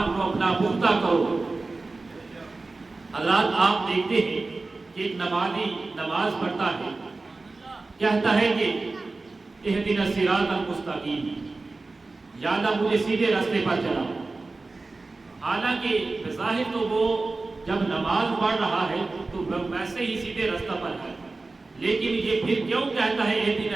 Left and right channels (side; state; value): left; quieter; 3.5 dB